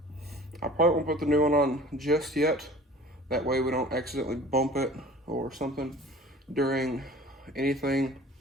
probably won't put the new one on just yet. That way we don't accidentally bump it or something during anything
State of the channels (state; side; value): normal; both; correlation 0.45